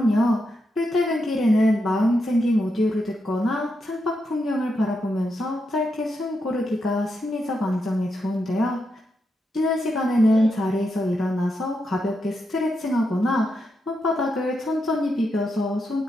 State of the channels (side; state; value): both; normal; correlation 0.84